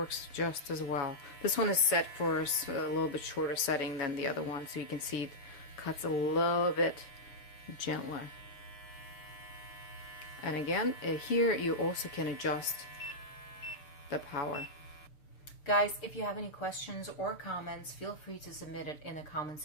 just as well. This one is set for a little bit shorter setting than the other one, so you can see it cuts a little bit gentler. And again, here you also can adjust the power. Guys, if you have any questions or comments, feel free to submit it in the comment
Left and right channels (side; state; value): right; late; 6.7 ms